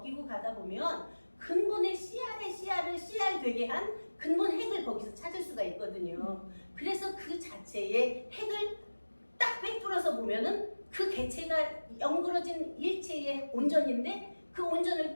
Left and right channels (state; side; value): inverted; both; correlation -1.00